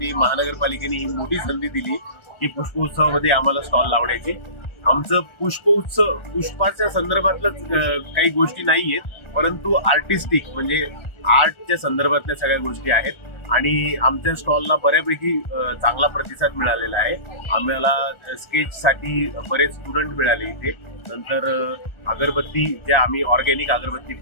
महानगरपालिकेने ही मोठी संधी दिली की पुष्पोत्सवामध्ये आम्हाला स्टॉल लावण्याची। आमचं पुष्पोत्सव पुष्पाच्या संदर्भातलंच काही गोष्टी नाहीयेत, परंतु आर्टिस्टिक म्हणजे आर्टच्या संदर्भातल्या सगळ्या गोष्टी आहेत आणि आमच्या स्टॉलला बऱ्यापैकी चांगला प्रतिसाद मिळालेला आहे। आम्हाला स्केचसाठी बरेच स्टुडंट मिळाले इथे। नंतर अगरबत्ती ज्या आम्ही ऑर्गॅनिक अगरबत्ती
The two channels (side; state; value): right; late; 1.4 ms